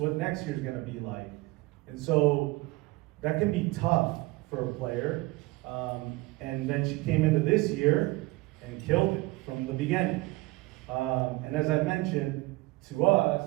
next year's going to be like? And so that can be tough for a player. And then she came into this year and killed it from the beginning. And as I mentioned, to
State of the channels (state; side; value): quieter; left; 21.6 dB